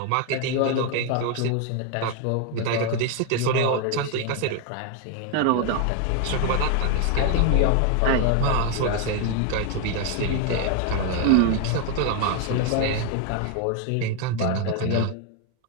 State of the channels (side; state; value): both; different; correlation 0.01